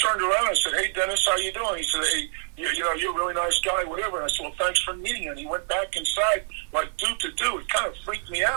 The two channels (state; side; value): silent; left; digital silence